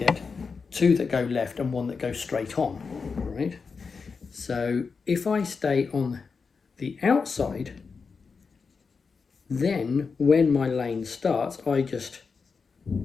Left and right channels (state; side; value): quieter; right; 5.1 dB